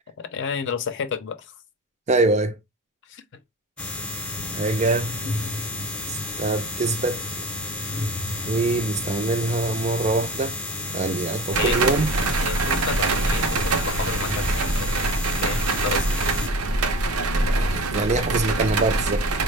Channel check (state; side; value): normal; both; correlation 0.34